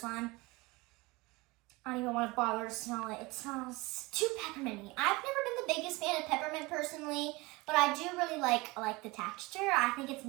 I don't even want to bother to smell it. It smells too pepperminty. I've never been the biggest fan of peppermint personally, but I do really like the texture. I think it's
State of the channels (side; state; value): left; quieter; 23.3 dB